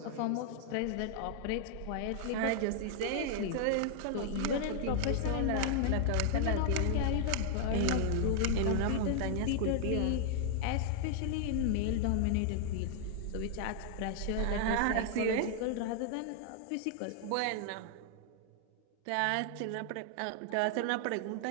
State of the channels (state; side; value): different; both; correlation 0.00